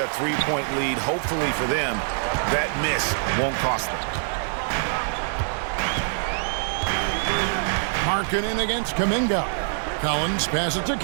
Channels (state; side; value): silent; left; 62 dB below the other